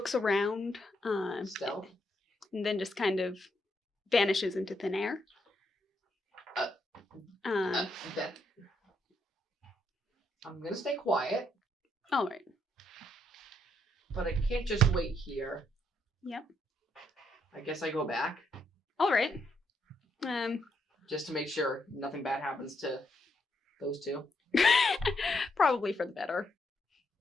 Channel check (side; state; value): both; normal; correlation 0.77